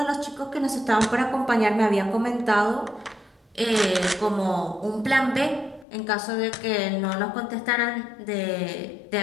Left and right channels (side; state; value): right; drops out; at 5.9 s